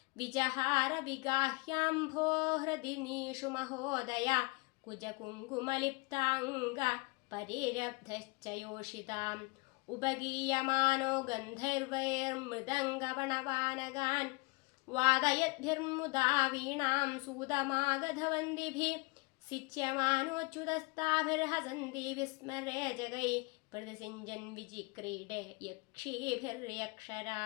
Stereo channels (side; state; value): right; quieter; 28.3 dB